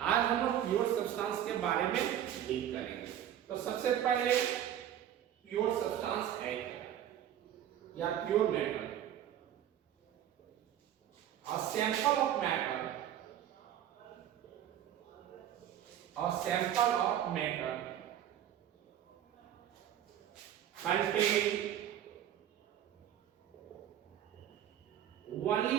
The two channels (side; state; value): left; quieter; 10.9 dB